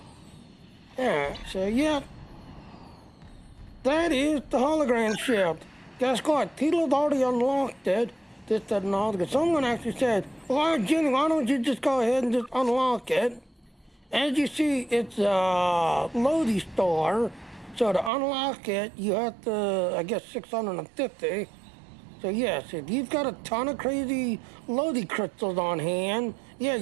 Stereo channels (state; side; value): drops out; left; at 18.1 s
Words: Yeah, so yeah. That is the hologram ship. Guess what? People have already unlocked it. This, that, and all. Because someone actually said, well, Jenny, why don't you just go ahead and just unlock it? As you see, it's a Lodi store. So to unlock it, you have to, I guess, 650. So yes, if you've got a ton of crazy Lodi crystals on hand, yeah,